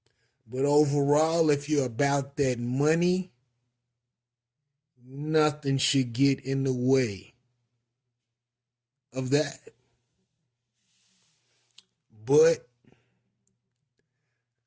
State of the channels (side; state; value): both; identical; correlation 1.00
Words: But overall, if you're about that money, nothing should get in the way of that. But